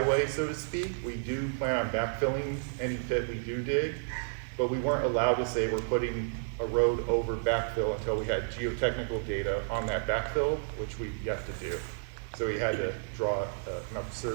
so to speak. We do plan on backfilling any pit we do dig, but we weren't allowed to say we're putting a road over backfill until we had geotechnical data on that backfill, which we've yet to do. So we had to draw an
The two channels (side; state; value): left; silent; 57 dB below the other